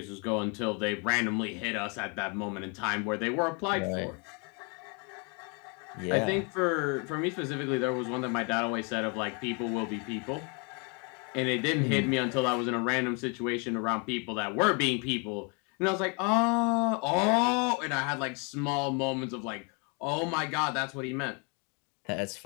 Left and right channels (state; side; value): quieter; right; 34.7 dB